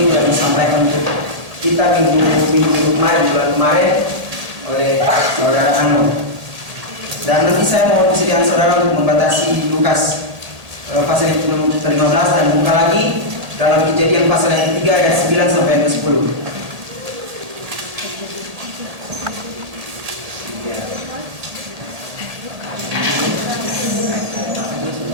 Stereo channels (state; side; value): late; left; 1.8 ms